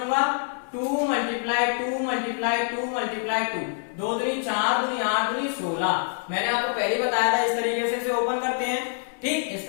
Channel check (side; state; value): right; silent; 61 dB below the other